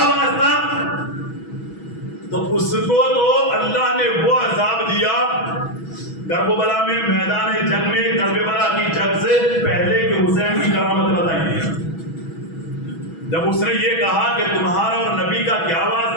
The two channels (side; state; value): right; late; 6.1 ms